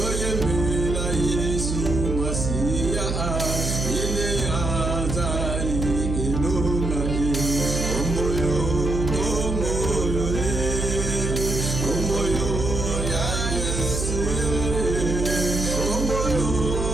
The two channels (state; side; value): noise; right; hum, 2 dB below the sound